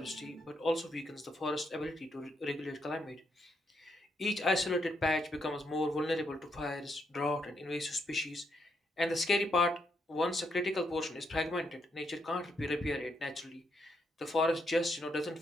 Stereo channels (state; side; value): normal; both; correlation 0.78